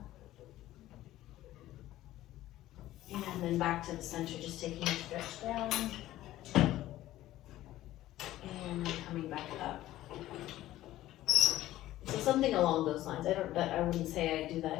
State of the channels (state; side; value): quieter; right; 14.9 dB